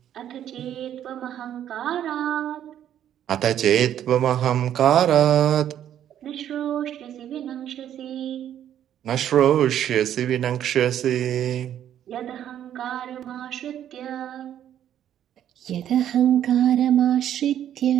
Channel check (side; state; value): left; quieter; 10.6 dB